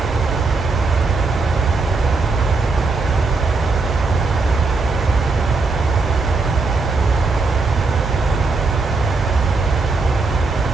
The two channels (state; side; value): quieter; left; 3.9 dB